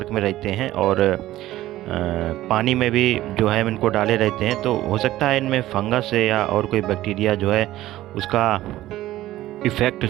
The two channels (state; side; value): quieter; left; 15.2 dB